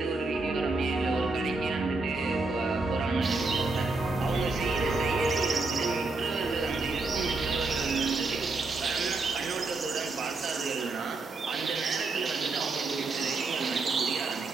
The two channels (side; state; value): left; quieter; 3.5 dB